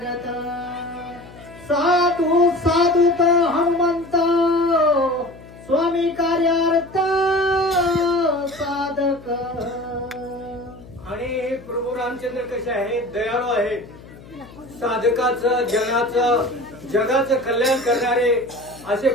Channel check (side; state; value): left; noise; hum, 20 dB below the sound